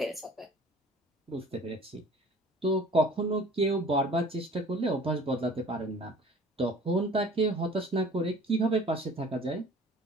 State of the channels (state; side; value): normal; both; correlation 0.48